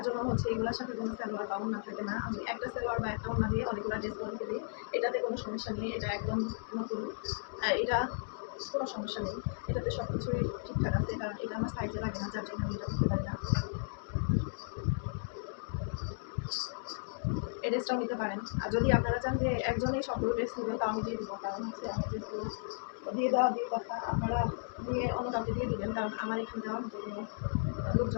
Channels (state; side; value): silent; right; digital silence